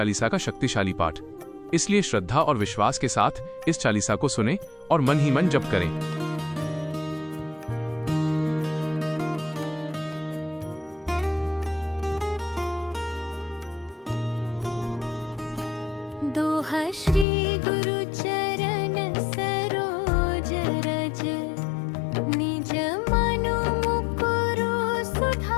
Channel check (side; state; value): right; drops out; at 17.2 s